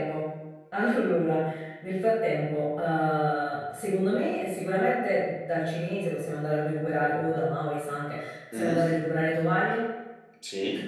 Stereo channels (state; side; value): identical; both; correlation 1.00